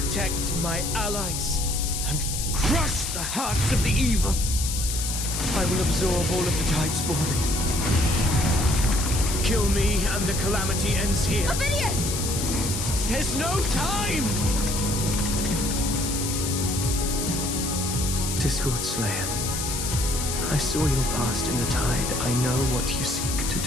my allies and crush the hearts of the evil. I will absorb all of the Tidespawn. Kill me and the calamity ends here. Ovidius! There's no time! Discord Slayer, I saw your past in the tide. I know what you seek to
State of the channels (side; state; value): left; noise; hiss, 3 dB below the sound